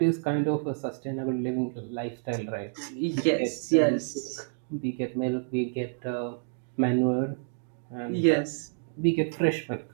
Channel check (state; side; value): silent; left; digital silence